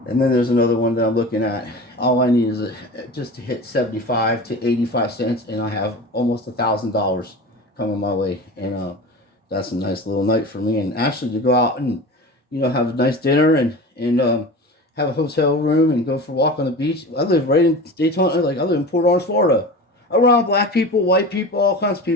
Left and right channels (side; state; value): both; normal; correlation 0.32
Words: and then there's another one that I'm looking at. All I need is just to hit 75 to 85 cents, and I have almost $1,000 coming my way. And that's a nice little night for me. And actually to go out and have a nice dinner and have a hotel room and go for a walk on the beach. I live right in Daytona. I live in Port Orange, Florida, around black people, white people, all kinds of